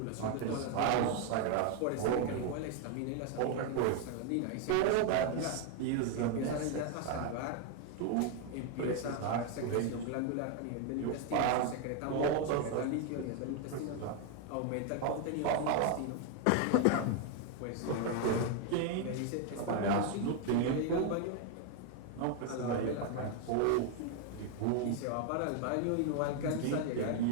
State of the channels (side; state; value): both; different; correlation 0.01